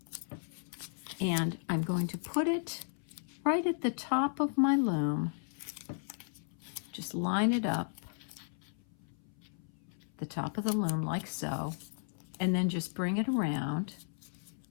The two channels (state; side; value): silent; right; 54 dB below the other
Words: and I'm going to put it right at the top of my loom. Just line it up, the top of the loom like so, and then just bring it around.